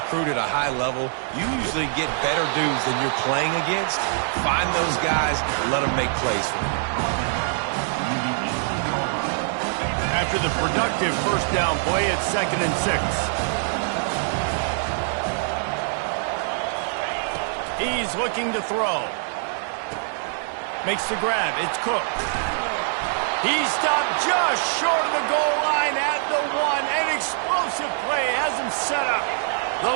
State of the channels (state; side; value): silent; left; 63 dB below the other